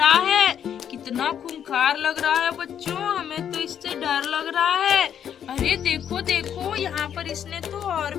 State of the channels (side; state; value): right; quieter; 9.1 dB